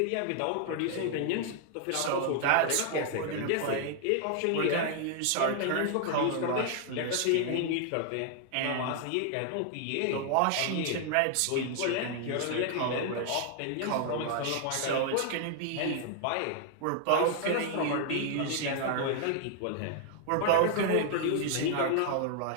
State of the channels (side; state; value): both; different; correlation 0.00